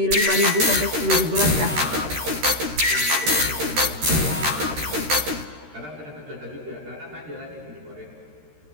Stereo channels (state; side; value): late; left; 13 ms